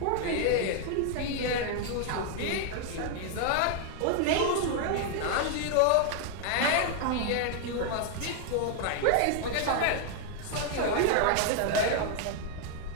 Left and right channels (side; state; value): both; different; correlation 0.00